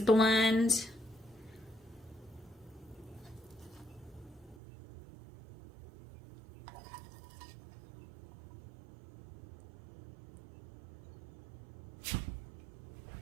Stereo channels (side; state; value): left; drops out; at 4.6 s